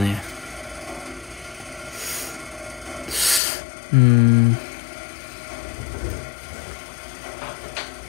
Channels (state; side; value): drops out; right; at 3.4 s